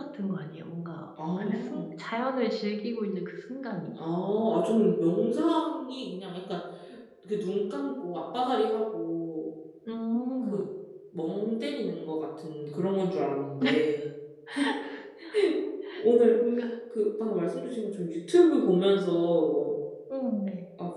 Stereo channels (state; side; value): identical; both; correlation 1.00